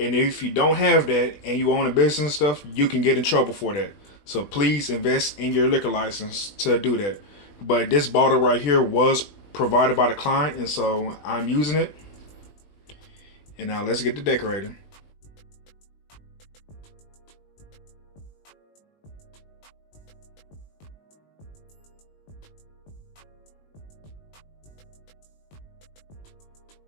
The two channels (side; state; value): right; late; 20 ms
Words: if you don't have that and you own a business and stuff, you can get in trouble for that. So please invest in your liquor license to do that. But this bottle right here was provided by the client, and so I'm using it. And now let's get to decorating.